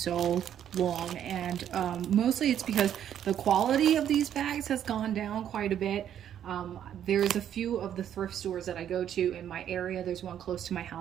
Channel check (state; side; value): quieter; left; 10.0 dB